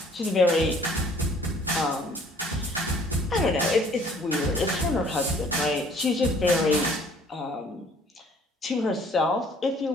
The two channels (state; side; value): normal; both; correlation 0.57